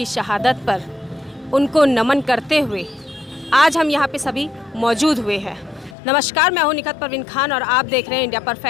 शहादत पर उनको नमन करते हुए आज हम यहाँ पे सभी मौजूद हुए हैं। नमस्कार, मैं हूं निखत परवीन खान और आप देख रहे हैं इंडिया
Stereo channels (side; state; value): right; drops out; at 6.0 s